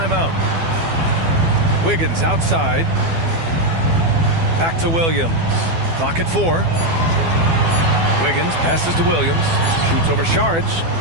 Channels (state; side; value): late; left; 12 ms